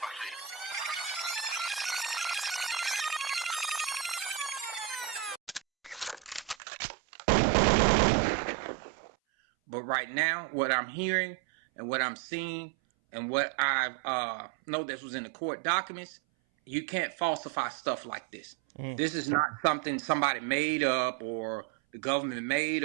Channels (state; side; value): drops out; left; at 6.6 s